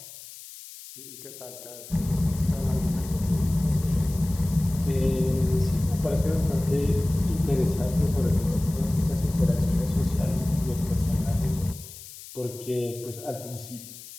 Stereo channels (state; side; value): noise; left; hiss, 15 dB below the sound